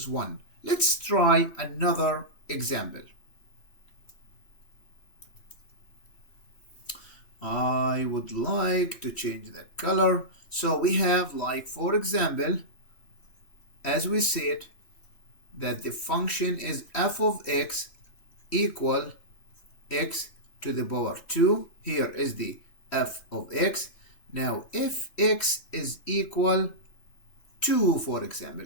1. Let's try another example. I would like to change the color. So we have, like, for example, as we said, that the function is f of x equal x to the power 2. Here is the f of x. Now, if x is equal 2, for example,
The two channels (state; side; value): late; right; 3.1 ms